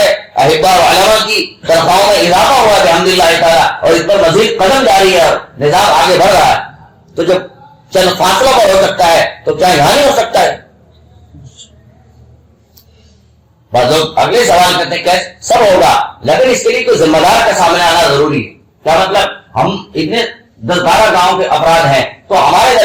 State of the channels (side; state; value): both; identical; correlation 1.00